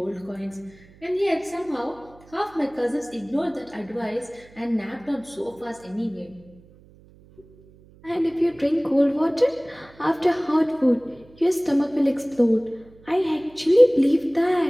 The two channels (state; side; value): noise; right; hum, 26 dB below the sound